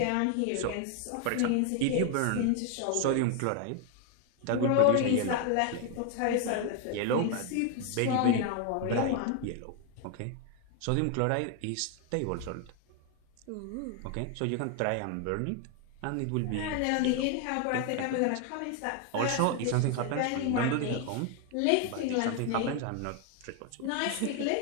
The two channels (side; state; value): both; different; correlation 0.01